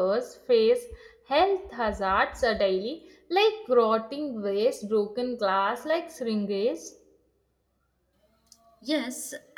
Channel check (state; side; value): identical; both; correlation 1.00